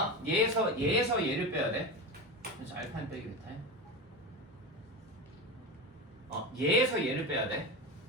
얘에서 얘를 빼야 돼. 그래서 알파인 빼기 베타인. 얘에서 얘를 빼야 돼.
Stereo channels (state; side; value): normal; both; correlation 0.22